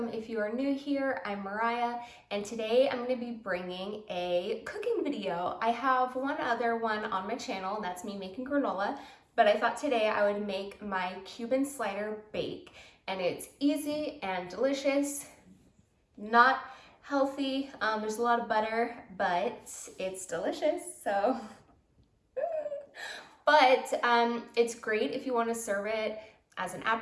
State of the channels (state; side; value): identical; both; correlation 1.00